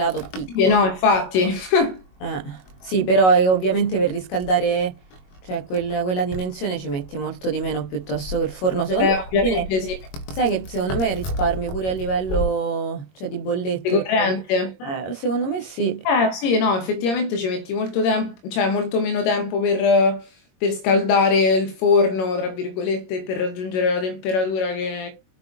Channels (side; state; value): right; late; 22 ms